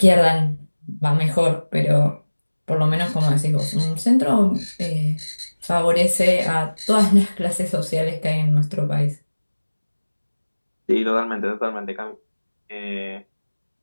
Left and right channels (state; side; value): inverted; both; correlation -1.00